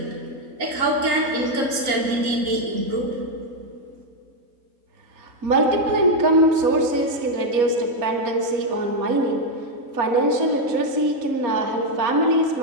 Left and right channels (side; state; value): left; late; 3.8 ms